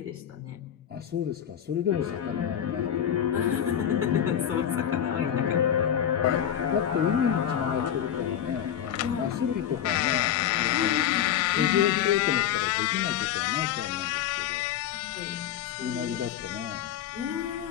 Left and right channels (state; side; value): quieter; right; 9.8 dB